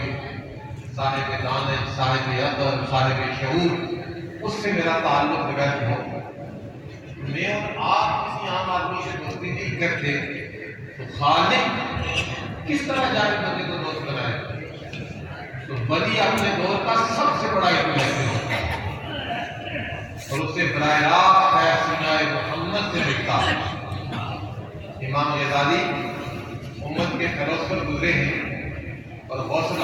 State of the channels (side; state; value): both; identical; correlation 1.00